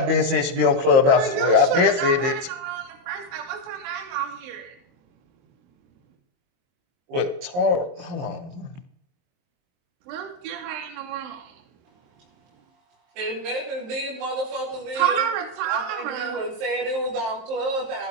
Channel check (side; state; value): left; late; 22 ms